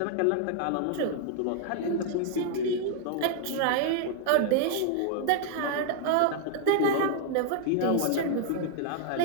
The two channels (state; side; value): different; both; correlation 0.00